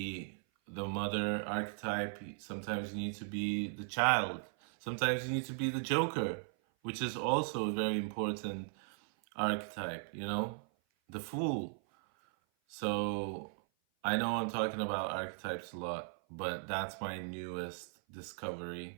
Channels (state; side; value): silent; left; 53 dB below the other